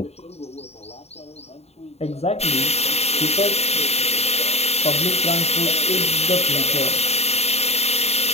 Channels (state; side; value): late; right; 0.30 ms